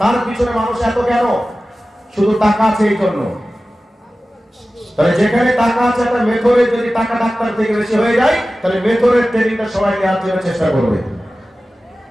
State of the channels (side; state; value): both; normal; correlation 0.96